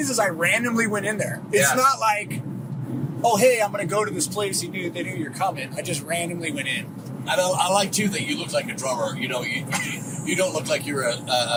I randomly went in there. It's not like, oh, hey, I'm going to go to this place. They knew you're coming. I just randomly went in. I like too that you look like a drummer. You don't look like you're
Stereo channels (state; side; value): identical; both; correlation 1.00